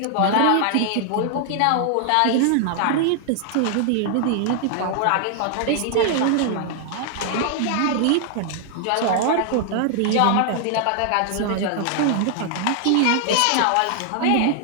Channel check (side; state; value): both; different; correlation 0.00